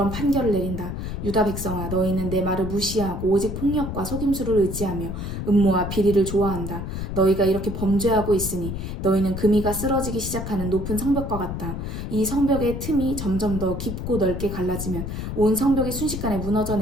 판결을 내린다. 유다 백성아, 너희는 내 말을 무시하고 오직 폭력과 속임수를 의지하며 음모와 비리를 좋아한다. 너희가 이렇게 범죄하고 있으니 너희는 금이가 쓰러지기 시작하는 높은 성벽과 같다. 이 성벽의 틈이 점점 더 깊고 넓게 갈라지면 온 성벽이 순식간에 무너져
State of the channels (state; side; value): noise; left; rumble, 5 dB below the sound